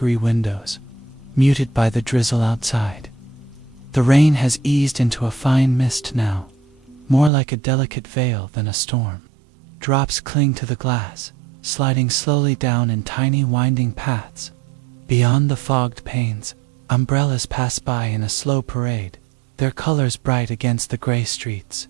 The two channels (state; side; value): drops out; left; at 7.3 s